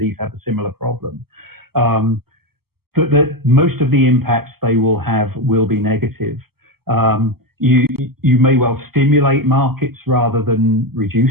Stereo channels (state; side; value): late; left; 0.95 ms